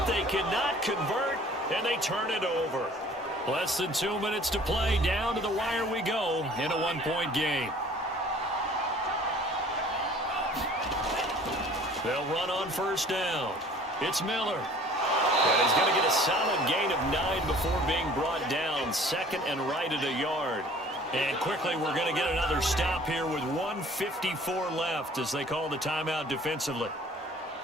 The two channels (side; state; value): both; normal; correlation 0.51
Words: They cannot convert, and they turn it over. Less than 2 minutes to play. Down to the wire we go in a 1-point game. They'll run on 1st down. It's Miller. And he's going to get a solid gain of 9 before being brought down. 2nd and right at a yard. And quickly, we're going to get another stop here with 1:54 left as they call the timeout defensively.